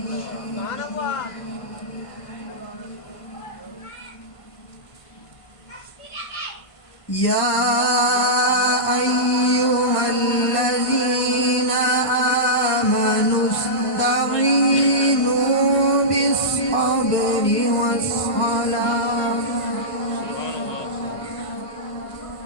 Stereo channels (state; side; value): late; right; 1.5 ms